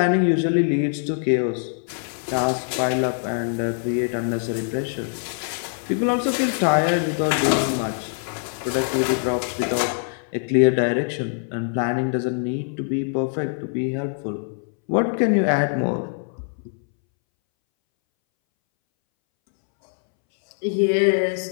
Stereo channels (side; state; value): right; silent; 63 dB below the other